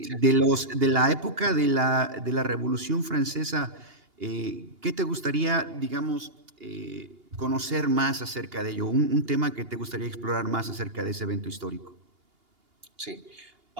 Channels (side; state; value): left; late; 2.8 ms